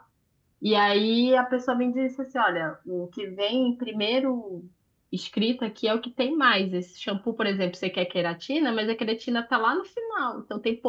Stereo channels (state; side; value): identical; both; correlation 1.00